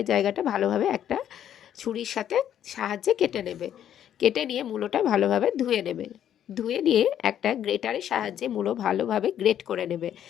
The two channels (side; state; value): right; quieter; 10.2 dB